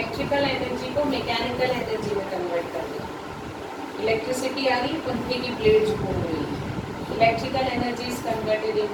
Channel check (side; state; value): both; identical; correlation 1.00